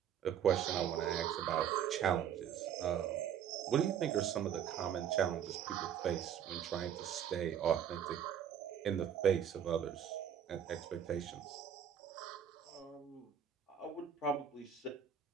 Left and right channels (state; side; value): quieter; left; 8.9 dB